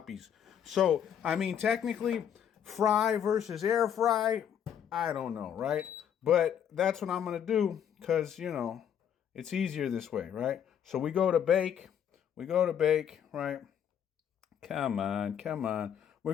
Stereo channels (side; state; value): right; quieter; 8.9 dB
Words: So, I mean, technically, fry versus air fry, I don't know, right? But that's what I'm going to do because, it's easier this way, right? So we go to bake. Right? Come on. We're